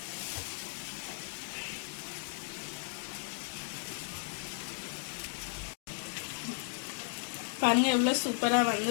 பாருங்க எவ்வளோ சூப்பராக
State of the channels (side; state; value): right; silent; digital silence